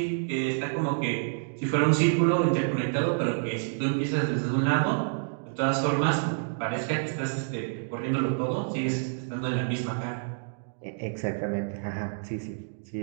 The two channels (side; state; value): left; silent; digital silence